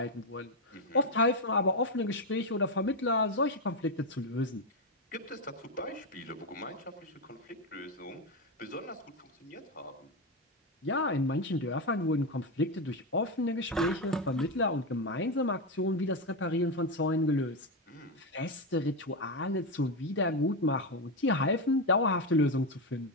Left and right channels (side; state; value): both; normal; correlation 0.09